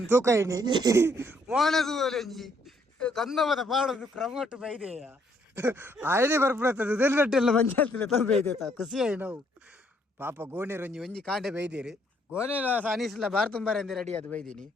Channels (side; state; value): both; normal; correlation 0.68